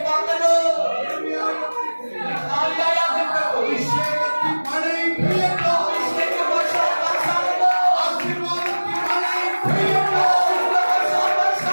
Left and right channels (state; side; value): inverted; both; correlation -1.00